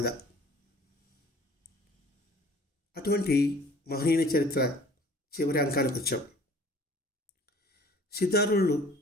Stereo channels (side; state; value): both; normal; correlation 0.51